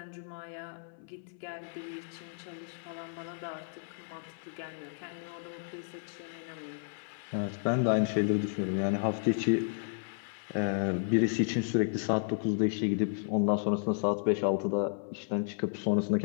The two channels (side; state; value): right; silent; 55 dB below the other